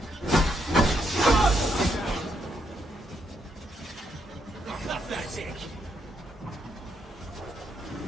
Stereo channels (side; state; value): both; normal; correlation 0.77